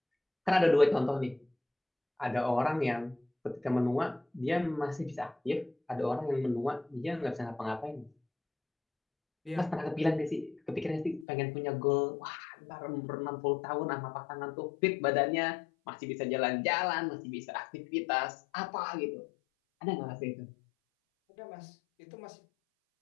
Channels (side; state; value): right; drops out; at 11.2 s